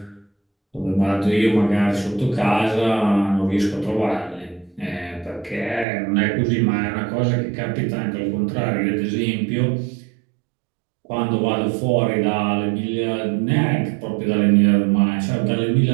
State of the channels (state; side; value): drops out; left; at 5.9 s